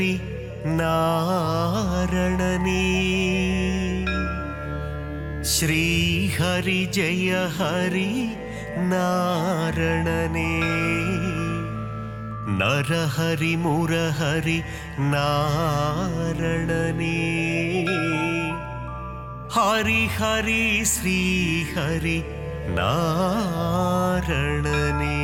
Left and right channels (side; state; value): both; identical; correlation 1.00